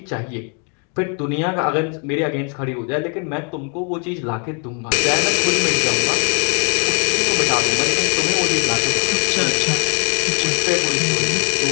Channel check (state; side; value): quieter; right; 39.1 dB